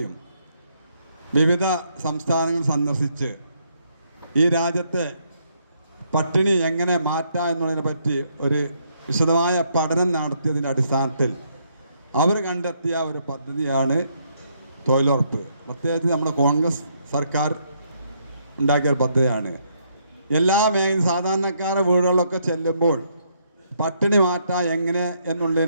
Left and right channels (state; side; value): inverted; both; correlation -0.73